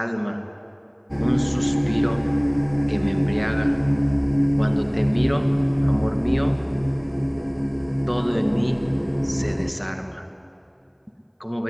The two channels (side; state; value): both; identical; correlation 1.00